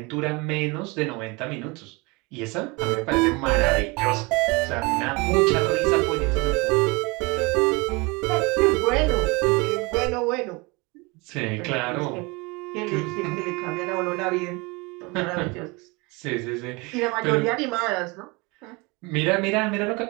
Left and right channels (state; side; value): quieter; left; 26.7 dB